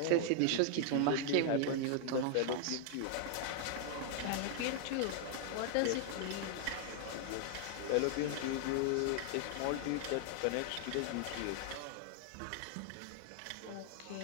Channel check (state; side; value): different; both; correlation -0.01